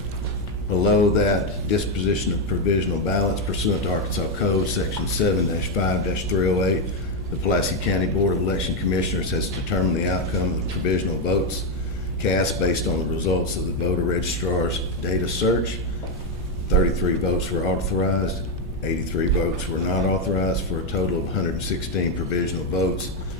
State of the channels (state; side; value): noise; left; rumble, 13 dB below the sound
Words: below that, disposition of provisional ballots pursuant to Arkansas Code, Section 7-5-308. The Pulaski County Board of Election Commissioners has determined the outcome of the provisional votes cast based on the results of the voter registrar's data search. 33 votes were authorized, 83 votes were not authorized, for a total of 116 provisional votes